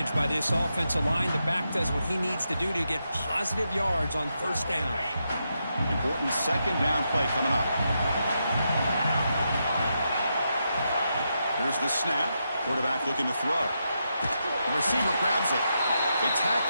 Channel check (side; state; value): both; inverted; correlation -0.84